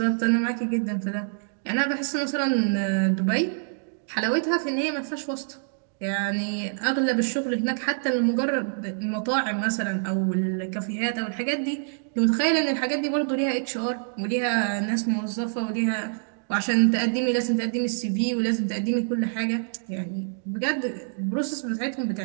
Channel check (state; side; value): silent; left; digital silence